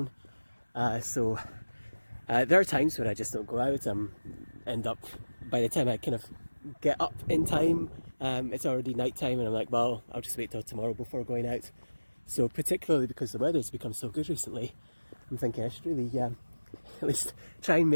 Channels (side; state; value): both; inverted; correlation -1.00